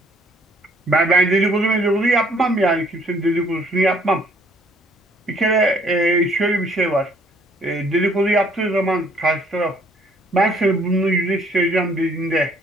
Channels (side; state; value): both; normal; correlation 0.62